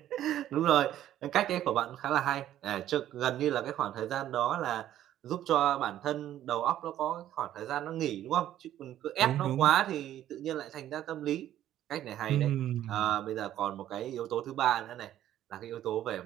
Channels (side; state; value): left; quieter; 12.1 dB